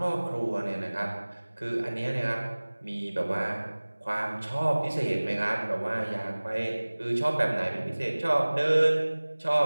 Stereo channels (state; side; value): inverted; both; correlation -1.00